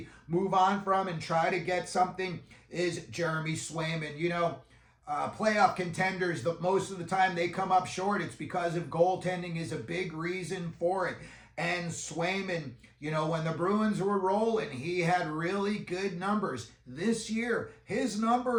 move on from and try to get something is Jeremy Swayman. Playoff contenders, most of the time they come up short. It's because of goaltending is a big reason for it. And Swayman, when the Bruins were rolling, he had really good numbers. This year, his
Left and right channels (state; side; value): identical; both; correlation 1.00